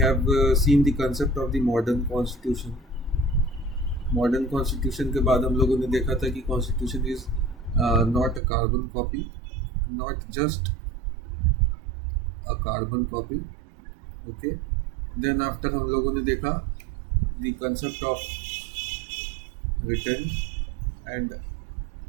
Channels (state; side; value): drops out; left; at 8.4 s